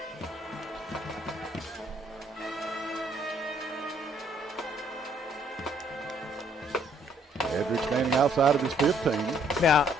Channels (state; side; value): normal; both; correlation 0.65